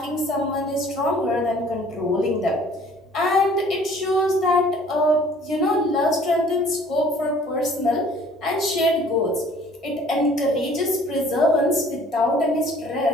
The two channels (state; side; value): normal; both; correlation 0.54